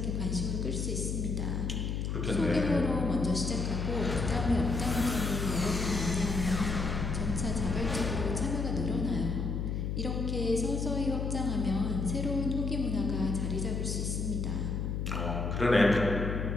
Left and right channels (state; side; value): noise; left; hum, 1 dB below the sound